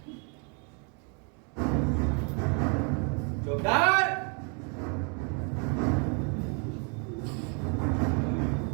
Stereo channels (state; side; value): quieter; left; 37.1 dB